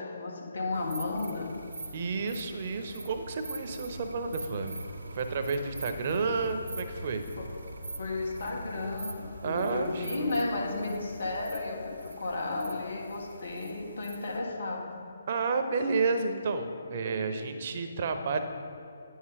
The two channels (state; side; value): inverted; both; correlation -0.75